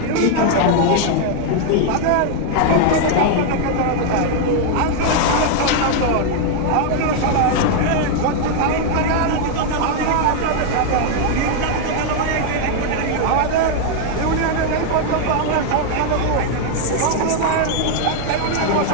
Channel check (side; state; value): both; different; correlation 0.00